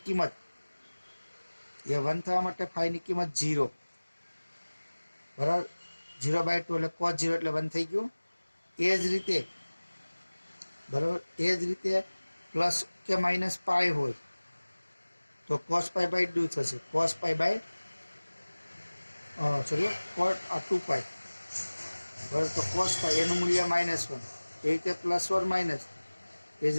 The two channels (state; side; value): inverted; both; correlation -1.00